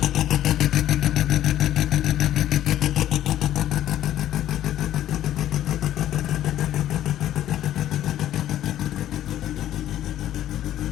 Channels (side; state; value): right; quieter; 12.4 dB